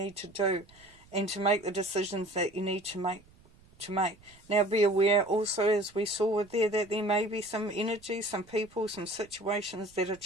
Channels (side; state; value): right; noise; rumble, 27 dB below the sound